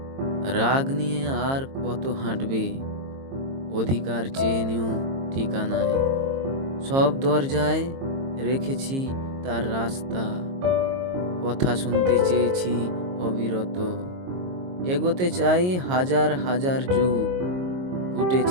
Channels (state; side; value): late; left; 22 ms